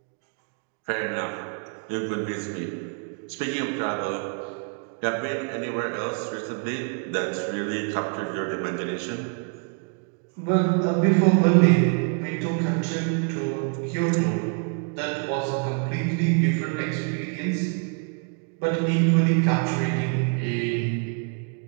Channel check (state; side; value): quieter; left; 38.1 dB